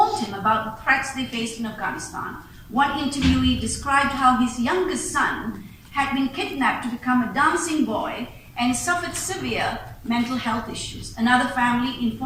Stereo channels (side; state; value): both; identical; correlation 1.00